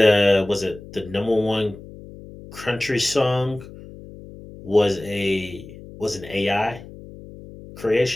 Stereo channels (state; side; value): noise; left; hum, 17 dB below the sound